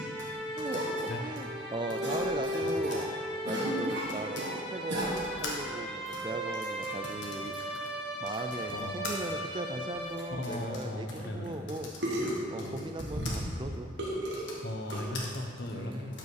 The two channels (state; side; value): normal; both; correlation 0.47